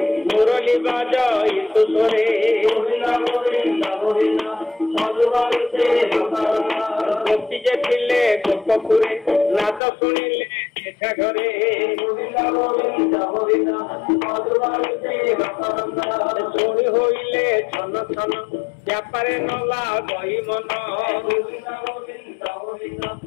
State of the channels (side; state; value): right; drops out; at 9.8 s